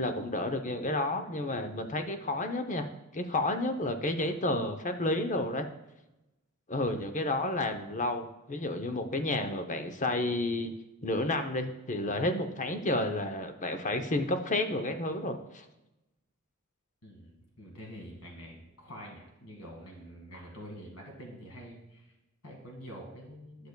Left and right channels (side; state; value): both; normal; correlation 0.18